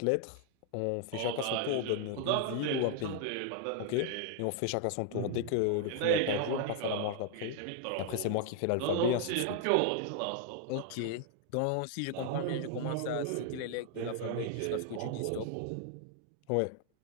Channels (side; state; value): both; different; correlation 0.00